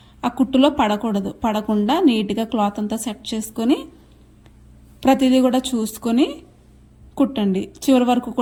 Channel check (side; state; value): both; identical; correlation 1.00